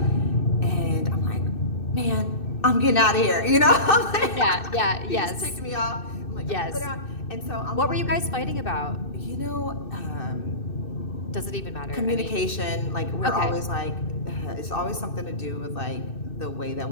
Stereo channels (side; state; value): right; late; 2.6 ms